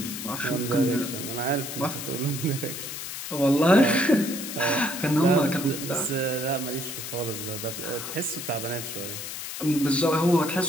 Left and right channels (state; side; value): noise; left; hiss, 7 dB below the sound